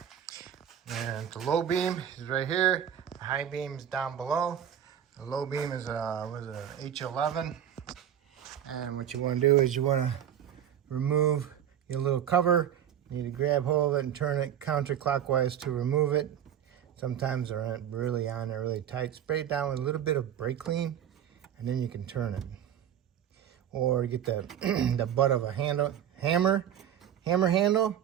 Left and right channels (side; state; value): left; quieter; 9.9 dB